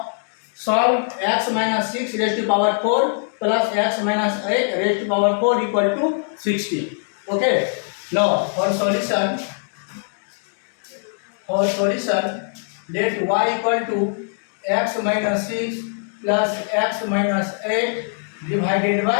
solve x minus 6 raised to power 4 plus x minus 8 raised to power 4 equal to 60. Okay, now for solution let y equal to x minus 6 plus x minus 8 divided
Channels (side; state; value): right; silent; digital silence